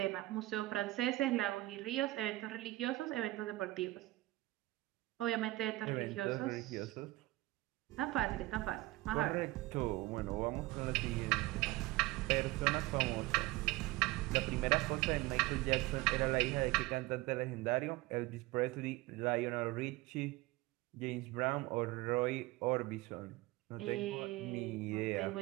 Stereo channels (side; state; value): left; quieter; 19.1 dB